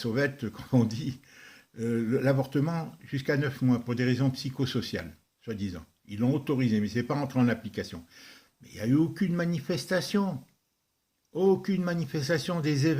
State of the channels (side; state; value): both; identical; correlation 1.00